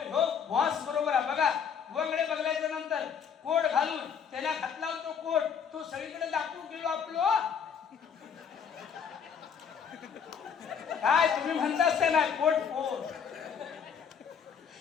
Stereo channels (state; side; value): quieter; right; 7.1 dB